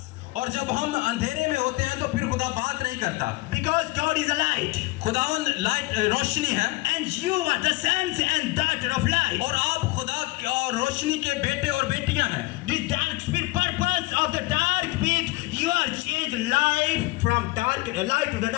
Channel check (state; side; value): quieter; right; 21.9 dB